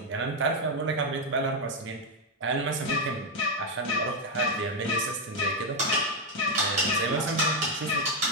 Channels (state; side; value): normal; both; correlation 0.04